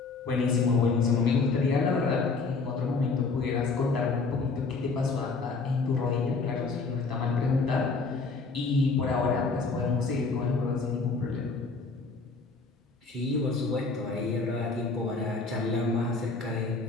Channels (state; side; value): quieter; right; 4.2 dB